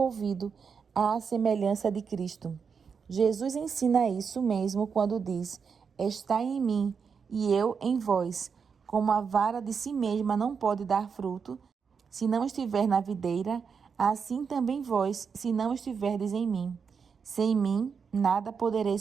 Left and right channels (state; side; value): quieter; left; 6.1 dB